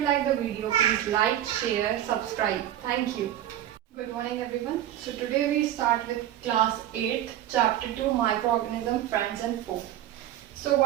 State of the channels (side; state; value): left; quieter; 12.4 dB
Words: like the video, please like, share, subscribe. Thank you. Good morning everyone. So today we start with class 8, chapter 2, microorganism, friends and foe. So